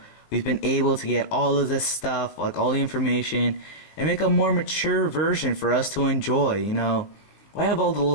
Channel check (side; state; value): right; late; 20 ms